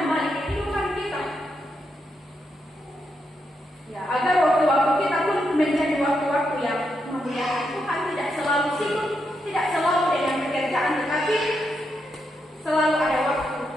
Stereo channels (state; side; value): normal; both; correlation 0.82